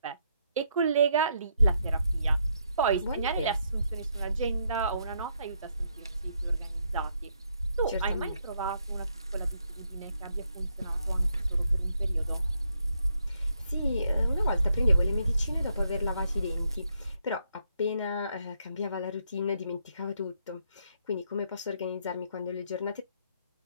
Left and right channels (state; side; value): inverted; both; correlation -0.76